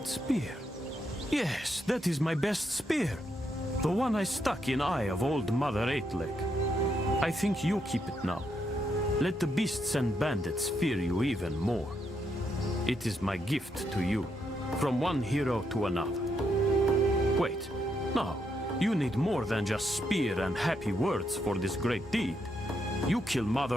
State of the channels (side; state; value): both; normal; correlation 0.79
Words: spear. Yes, that is my best spear. The one I stuck in eye of old Mother Eightleg. I think you keep it now. Let the beasts and bandits fear you even more. It is my gift to you, from one hero to another. Wait, no, you need more than just spear and happy words for this great deed. You kill